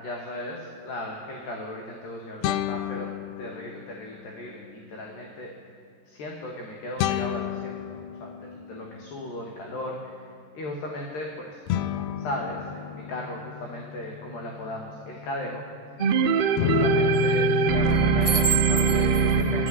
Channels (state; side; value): late; right; 13 ms